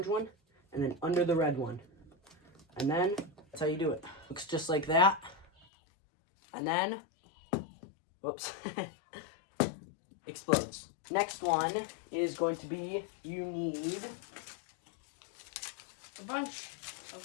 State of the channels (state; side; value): drops out; right; at 5.7 s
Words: one, and then under the red one. And then that's how you do it. Looks just like that. And then, whoops, explodes. Next one is going to be, you need a bunch of